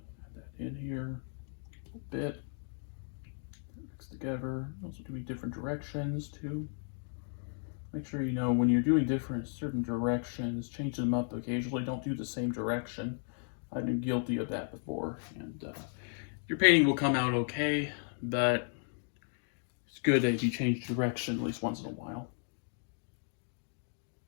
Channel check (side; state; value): right; silent; 55 dB below the other